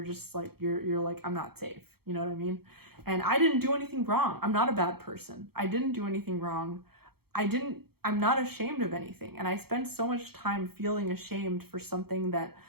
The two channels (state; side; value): late; left; 0.96 ms